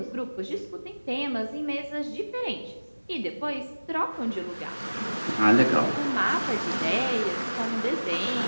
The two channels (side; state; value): both; inverted; correlation -1.00